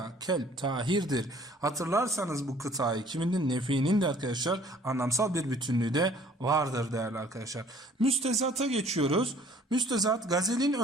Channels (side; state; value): both; normal; correlation 0.55